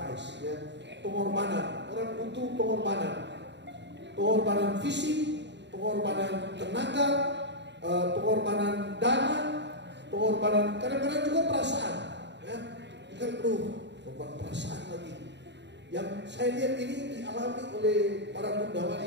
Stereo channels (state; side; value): late; left; 0.51 ms